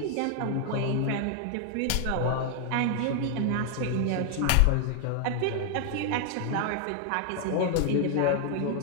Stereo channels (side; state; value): both; different; correlation 0.00